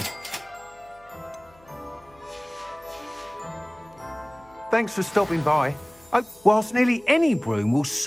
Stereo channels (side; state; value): left; noise; hum, 28 dB below the sound